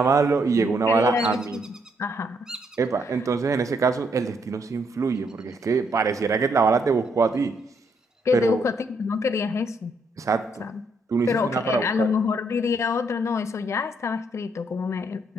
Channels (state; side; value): normal; both; correlation 0.73